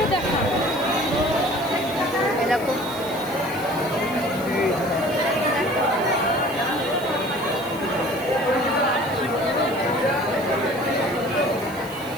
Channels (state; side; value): noise; right; hiss, 19 dB below the sound